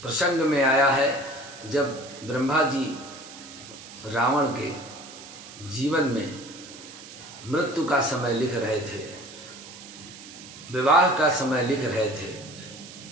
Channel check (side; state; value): right; noise; hiss, 16 dB below the sound